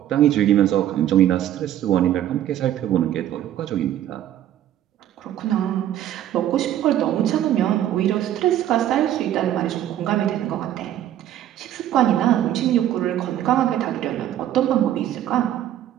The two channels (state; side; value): quieter; left; 11.9 dB